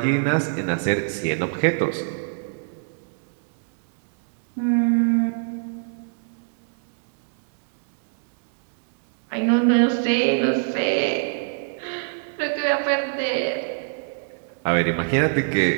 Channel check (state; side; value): silent; left; digital silence